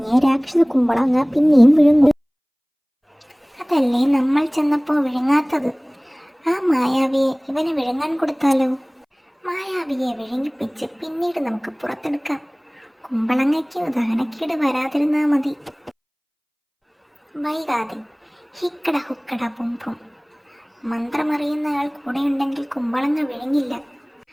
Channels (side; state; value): both; identical; correlation 1.00